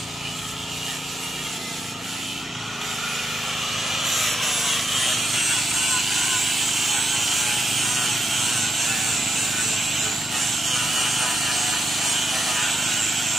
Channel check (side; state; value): both; normal; correlation 0.84